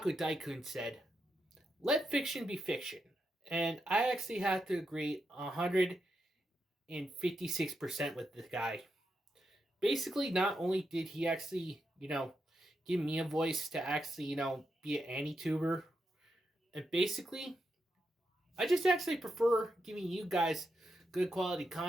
Daikun said. Let fiction be fiction. And I actually have to agree 156% with this guy. Basically, not only did he actually, give me a voice to actually, be an anti-tuber, and basically, I just actually prefer giving you guys good quality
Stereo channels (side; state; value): both; normal; correlation 0.84